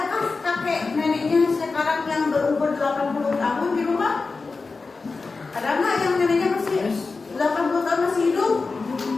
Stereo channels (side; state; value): right; quieter; 4.1 dB